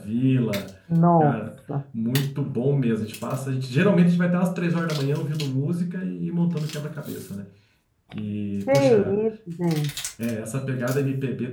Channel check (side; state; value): both; identical; correlation 1.00